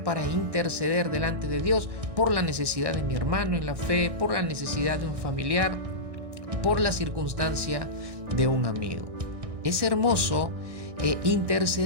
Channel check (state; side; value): late; left; 1.6 ms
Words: para interceder delante de Dios por la necesidad de mi hermano en la fe, por la necesidad de un familiar, por la circunstancia de un amigo. Es hermoso